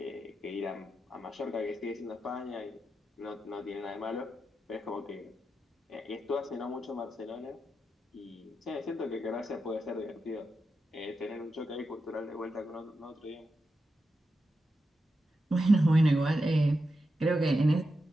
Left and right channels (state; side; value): normal; both; correlation 0.88